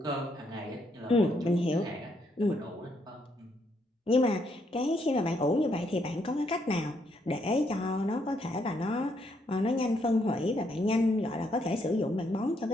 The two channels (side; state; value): both; normal; correlation 0.74